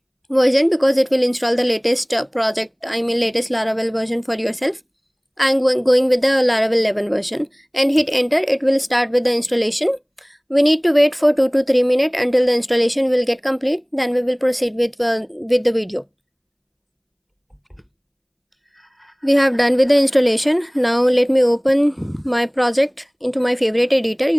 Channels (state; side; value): identical; both; correlation 1.00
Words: version because it will install the latest latest Laravel version for yourself. I'm going with the Laravel 11 version and hit enter. It will start with the installation. We need to wait for 2 to 3 minutes until the installation will get complete. Then we will proceed with the video. We have done with the installation. Now let me open my project into my favorite editor.